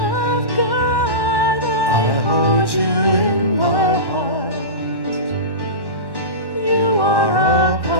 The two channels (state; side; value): late; right; 1.1 ms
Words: hold you in my heart. You are a